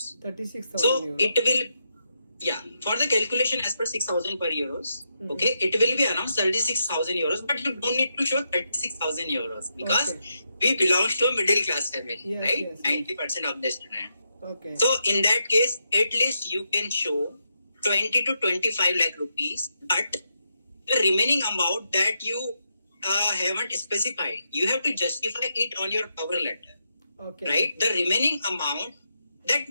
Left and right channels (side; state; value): both; inverted; correlation -0.83